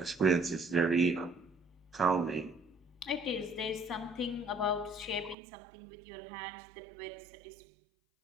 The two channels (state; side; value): drops out; left; at 5.4 s